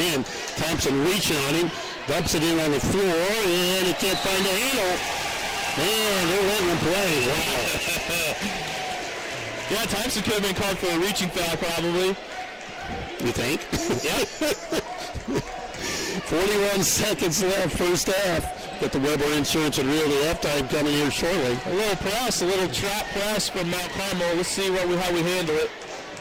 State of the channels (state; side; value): identical; both; correlation 1.00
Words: Thompson reaching on him. Dumps it in on the floor, and he can't find the handle. Man, they're letting them play. Wow. Yeah, Thompson could have been called for a reaching foul probably. You think? Yeah. 41 seconds left, first half. Got the Weber Insurance and Realty halftime coming here shortly. A little press, a little trap press from Mount Carmel. Let's see how we handle it.